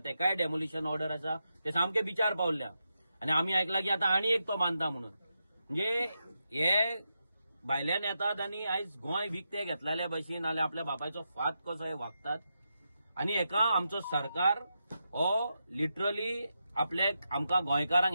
डेमोलिशन ऑर्डर आसा, ते सामके बिचार पावल्या. आणि आमी आयकलां की आतां आनी एक तो बांदता म्हणून. म्हणजे हे भायल्यान येतात आणि आयज गोंय विकते घेतलेल्या भशेन नाल्यार आपल्या बापायचो फात कसो हे वागतात. आणि हेका आमचो सरकार हो लिटरली आमकां गोंयकारांक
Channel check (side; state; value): both; inverted; correlation -0.86